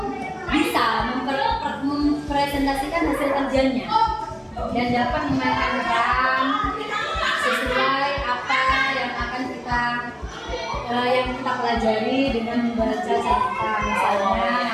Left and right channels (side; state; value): both; identical; correlation 1.00